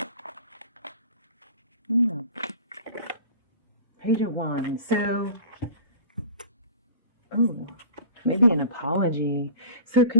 Page of Wands. So, maybe an apology. So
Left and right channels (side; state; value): both; inverted; correlation -0.41